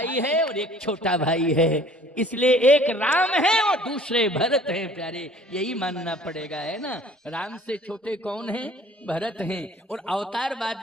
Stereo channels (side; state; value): both; normal; correlation 0.53